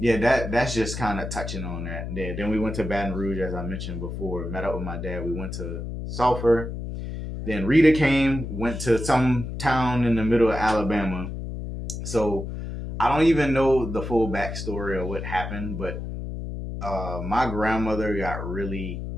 that's just kind of touching on that. Then we went to Baton Rouge, as I mentioned before. Met up with my dad. We went to Sulphur. Then Rita came, went to some town in the middle of Alabama. So I don't even know the full backstory of what happened, but my grandmother got really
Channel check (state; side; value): noise; left; hum, 6 dB below the sound